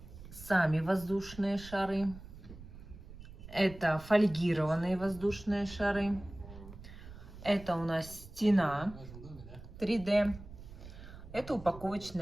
Сами воздушные шары. Это фольгированные воздушные шары. Это у нас стена 3D. Это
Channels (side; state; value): right; noise; rumble, 15 dB below the sound